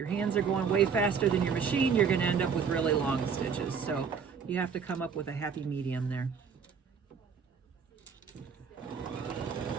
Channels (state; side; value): quieter; left; 6.2 dB